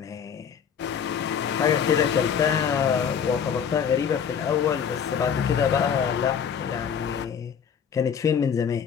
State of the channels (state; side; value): quieter; right; 7.5 dB